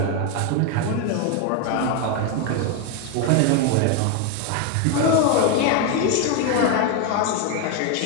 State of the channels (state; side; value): different; both; correlation 0.01